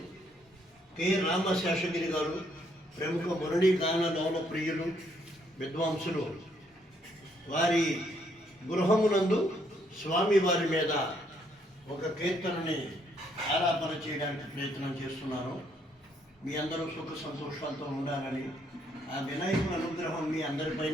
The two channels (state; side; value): normal; both; correlation 0.70